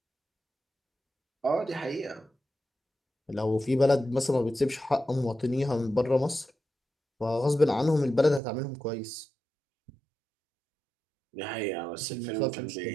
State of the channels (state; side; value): drops out; left; at 8.4 s